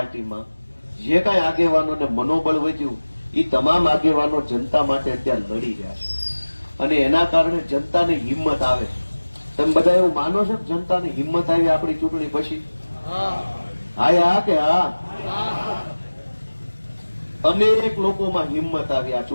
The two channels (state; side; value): inverted; both; correlation -1.00